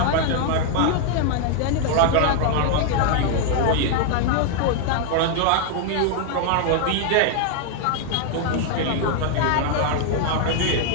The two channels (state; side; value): different; both; correlation 0.00